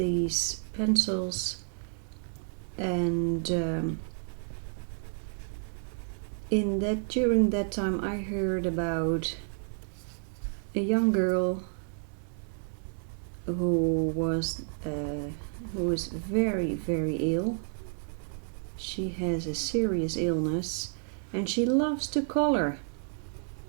pencils, and during that time I heard about a young girl who was very, very ill. She has a serious illness and she loves to color.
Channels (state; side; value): silent; left; digital silence